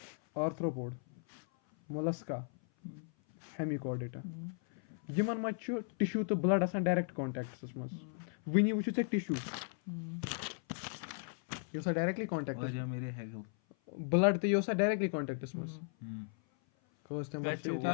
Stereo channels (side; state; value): right; silent; 54 dB below the other